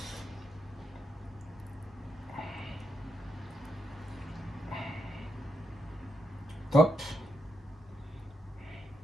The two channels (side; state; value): both; normal; correlation 0.83